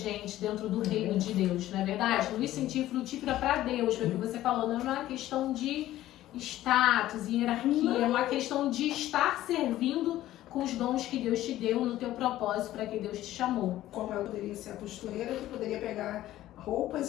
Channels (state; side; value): quieter; right; 14.3 dB